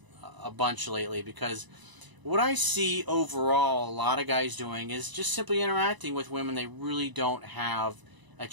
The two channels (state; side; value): late; left; 1.0 ms